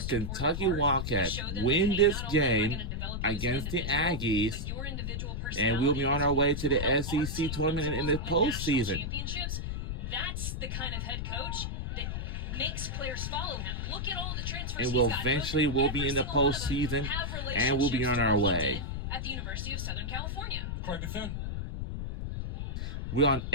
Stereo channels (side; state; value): left; noise; rumble, 3 dB below the sound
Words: Wildcats win this game against the Aggies, and we'll be on our way to the SEC tournament in the postseason. That's the kind of head coach that makes players follow him. Look at all the transfers. And we'll be in the postseason, and we'll be on our way. At the University of Southern California. Corey Bethune. We're on